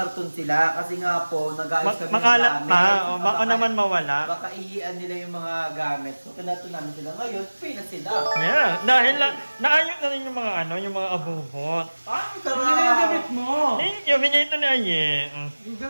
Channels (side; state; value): both; inverted; correlation -1.00